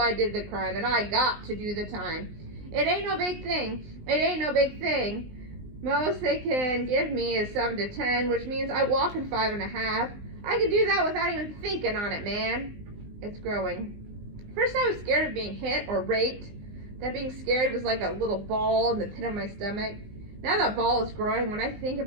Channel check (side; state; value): left; late; 19 ms